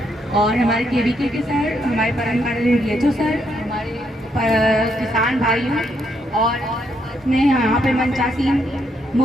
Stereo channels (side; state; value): both; normal; correlation 0.76